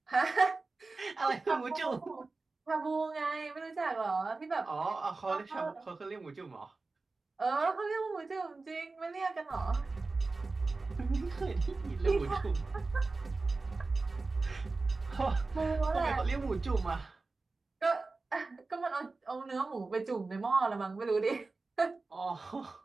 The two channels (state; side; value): quieter; left; 3.7 dB